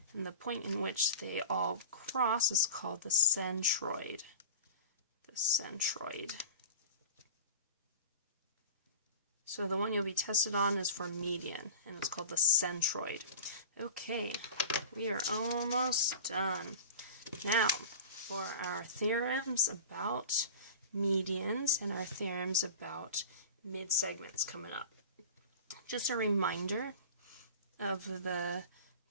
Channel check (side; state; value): both; inverted; correlation -0.35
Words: And the point in which they all cross is called the centroid. The centroid. So the one you'll be tested on is for median, and it's called the centroid. Okay, we are almost done. Now, for our theorems about medians and our theorems about mid-segments coming up. Just a reminder of the